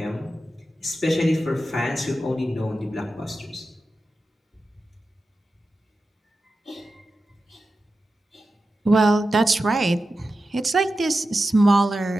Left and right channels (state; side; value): normal; both; correlation 0.92